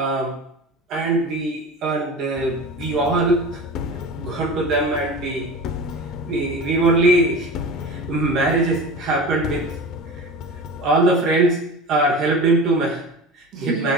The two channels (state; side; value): normal; both; correlation 0.32